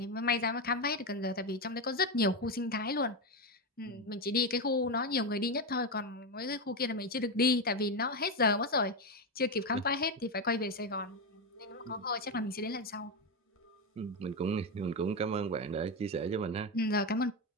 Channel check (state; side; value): normal; both; correlation 0.11